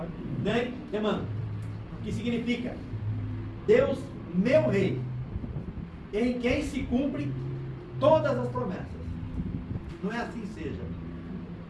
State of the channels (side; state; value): both; identical; correlation 1.00